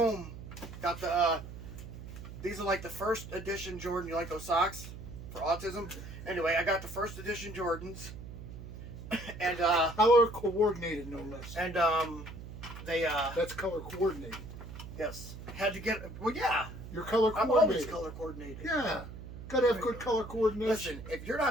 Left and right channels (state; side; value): noise; right; hum, 12 dB below the sound